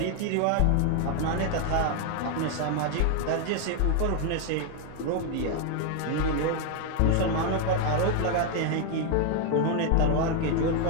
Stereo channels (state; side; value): different; both; correlation 0.01